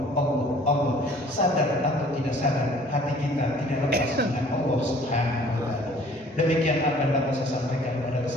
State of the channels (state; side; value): normal; both; correlation 0.53